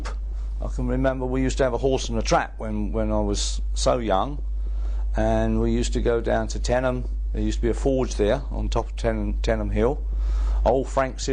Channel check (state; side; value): noise; right; rumble, 25 dB below the sound